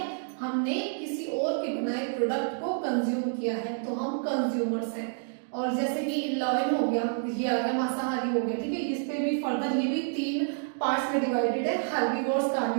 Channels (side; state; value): left; silent; digital silence